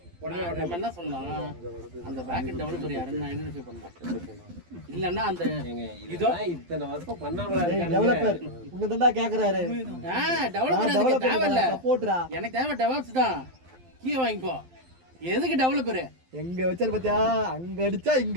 உடனே நம்ம என்ன சொல்லலாம், அந்த பேக் டெவலப்பர் யாருன்னு ஐடென்டிஃபை பண்ணலாம். இல்லன்னா அந்த இதோ இத்தனை வருஷம் பண்ணாமலா டெவலப்பர் உன்னை தான்டா கேட்குறாரு. டெவலப்பர் தேவையில்ல, சப்போர்ட்ரா. எனக்கு தேவை டெவலப்ஸ் தான். கீ வாங்கிக்கோ. எதுக்கு டெவலப்பரு? எங்க வச்சாரு பாத்தியா, அங்க அடிச்சா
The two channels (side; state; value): left; late; 12 ms